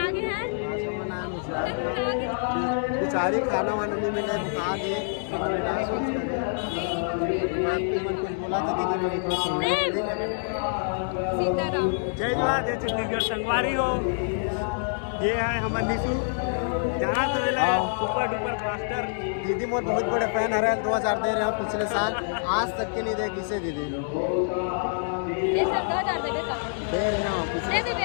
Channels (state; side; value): silent; right; 61 dB below the other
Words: आगे हैं बेचारी खाना वाना नहीं मिला बता दे कुछ बोला था दीदी मेरे को सीताराम जय जोहार जय छत्तीसगढ़ संगवारी हो ये है हमारे निशु जहाँ से मिला सुपर डुपर मास्टर दीदी मोर बहुत बड़े फैन है 2000 दे रहे हो पिछले साल आज तक के नहीं दे किसे दीदी ये सब 2000 दे का दे रहे हो दे दे